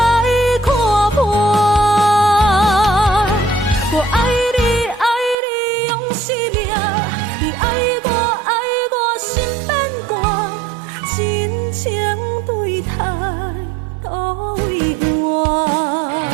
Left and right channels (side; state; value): left; drops out; at 5.4 s